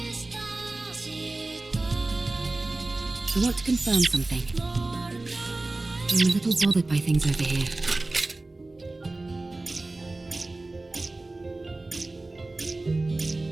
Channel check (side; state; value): left; quieter; 3.0 dB